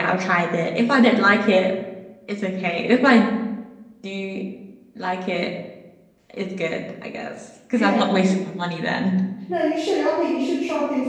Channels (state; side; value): identical; both; correlation 1.00